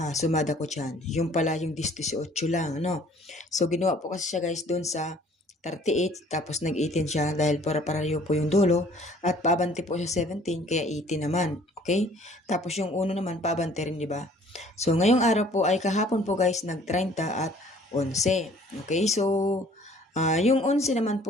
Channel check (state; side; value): normal; both; correlation 0.55